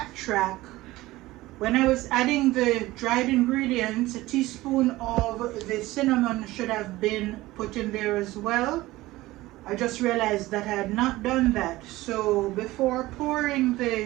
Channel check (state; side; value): quieter; left; 18.2 dB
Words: when I was adding the dried ingredients, a teaspoon of the cinnamon should have been put in there as well. I just realized that I had not done that. So before pouring